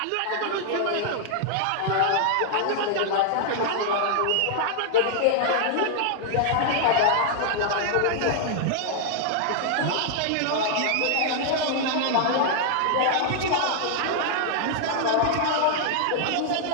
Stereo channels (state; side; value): different; both; correlation -0.01